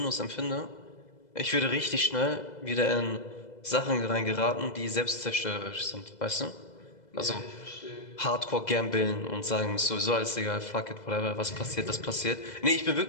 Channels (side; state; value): right; late; 2.0 ms